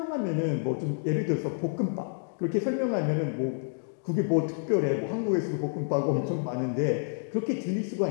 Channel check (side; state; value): right; silent; digital silence